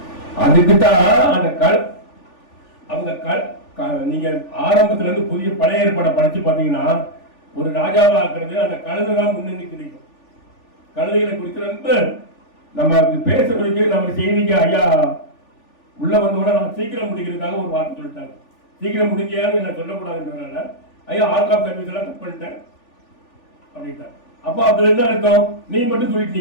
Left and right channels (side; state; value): right; late; 3.4 ms